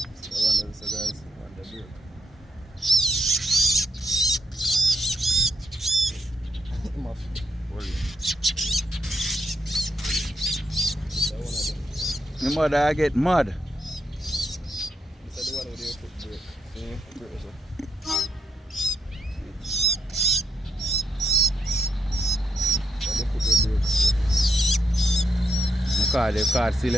The one there, so guys, on the break. My mother I get mad. This is the one with your foot break. See, break so. The card still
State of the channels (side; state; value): both; normal; correlation 0.80